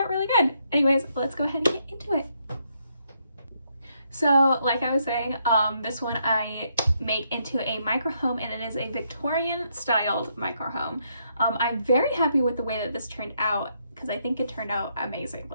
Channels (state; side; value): inverted; both; correlation -0.75